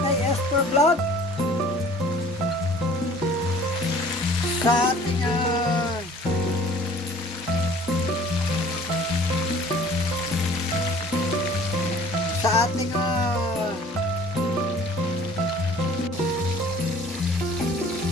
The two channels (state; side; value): normal; both; correlation 0.51